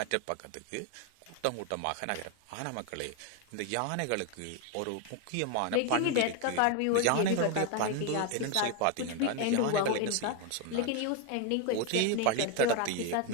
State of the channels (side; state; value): both; different; correlation 0.01